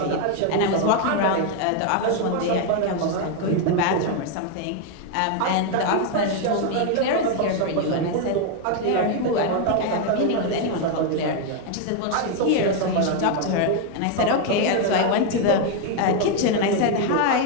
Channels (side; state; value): both; different; correlation 0.01